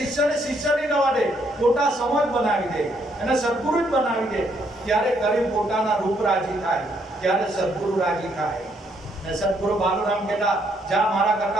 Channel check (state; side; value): normal; both; correlation 0.71